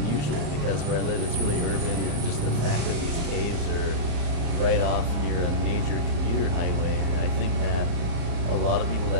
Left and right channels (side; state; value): left; late; 35 ms